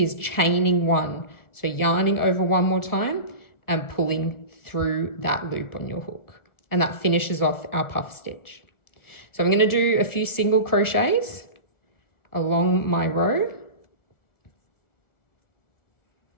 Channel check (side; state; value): right; late; 1.4 ms